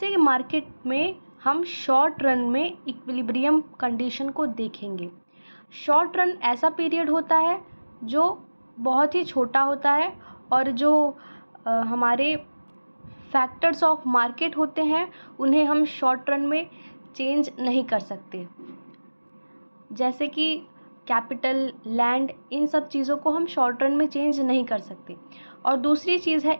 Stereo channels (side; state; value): both; inverted; correlation -1.00